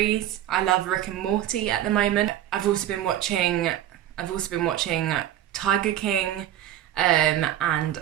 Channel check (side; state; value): left; quieter; 12.3 dB